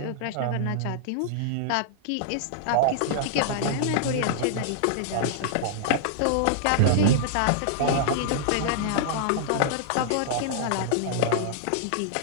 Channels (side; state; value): both; different; correlation -0.01